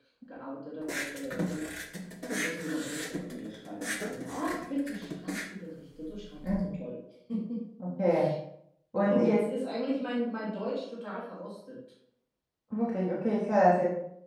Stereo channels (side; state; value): both; identical; correlation 1.00